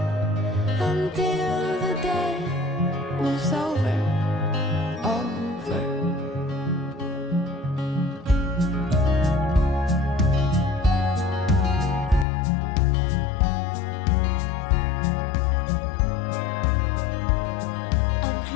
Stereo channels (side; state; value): right; drops out; at 12.2 s